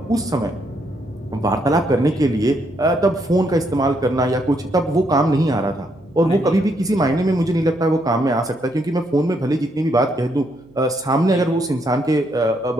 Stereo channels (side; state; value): right; noise; hum, 28 dB below the sound